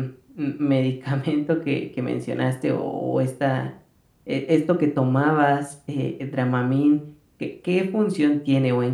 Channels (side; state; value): both; identical; correlation 1.00